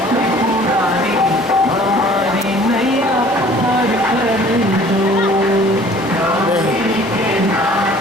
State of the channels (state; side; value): normal; both; correlation 0.51